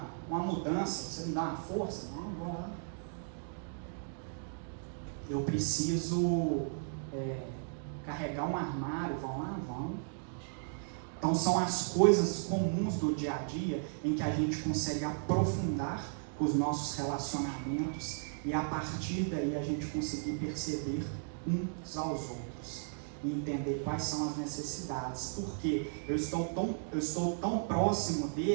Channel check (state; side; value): silent; left; digital silence